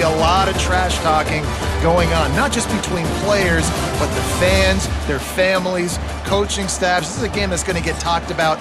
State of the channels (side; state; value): both; identical; correlation 1.00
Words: a lot of trash talking going on, not just between players, but the fans, their families, coaching staffs. This is a game that's going to get talked about